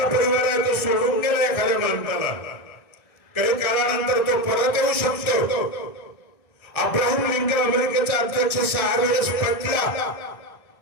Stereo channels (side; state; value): right; late; 1.3 ms